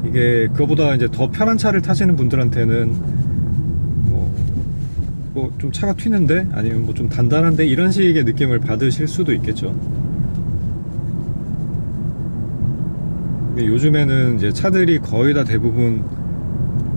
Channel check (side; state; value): both; inverted; correlation -1.00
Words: 이게 그거보다 이제 더 편한 차를 타시는 분들한테는 뭐 좀 차가 튀는데, 아니면 뭐 좀 단단한데, 이런 식의 느낌을 받으실 수도 있겠죠. 근데 요즘에는 이제 차들이 거의 다 대부분